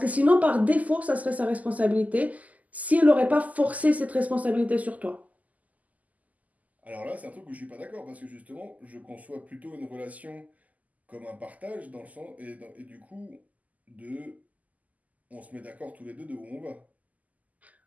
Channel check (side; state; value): left; late; 0.077 ms